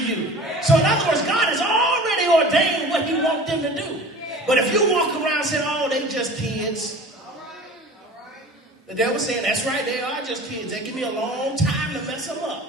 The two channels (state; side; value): normal; both; correlation 0.41